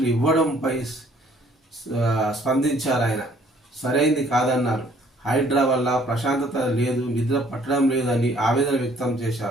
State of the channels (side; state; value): both; normal; correlation 0.60